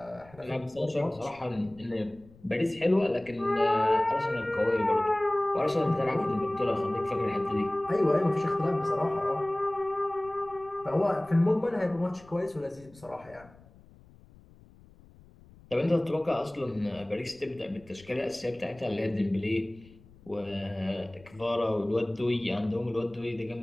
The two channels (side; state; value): left; noise; rumble, 24 dB below the sound